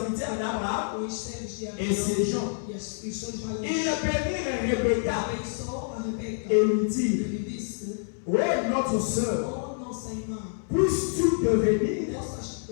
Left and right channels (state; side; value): silent; right; 60 dB below the other